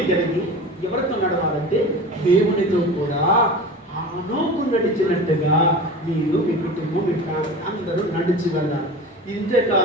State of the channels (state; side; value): normal; both; correlation 0.34